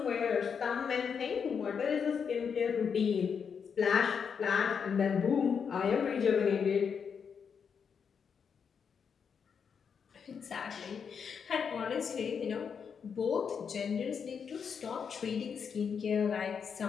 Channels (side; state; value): right; quieter; 6.6 dB